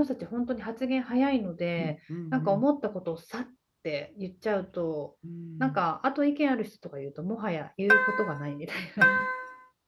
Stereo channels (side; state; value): both; identical; correlation 1.00